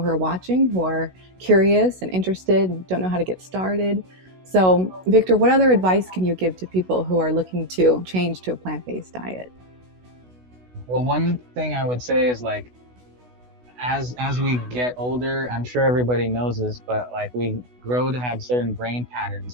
who are watching, who are curious and interested and don't know how to get started. So Victor, what other advice can you give to people who are looking to change to a plant-based diet? Well, one thing I would say is like, as we get older, I'm sure everybody knows this, but like we grow to have certain brain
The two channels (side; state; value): left; late; 16 ms